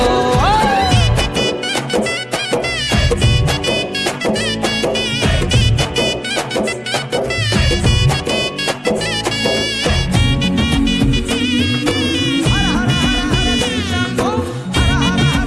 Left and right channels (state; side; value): identical; both; correlation 1.00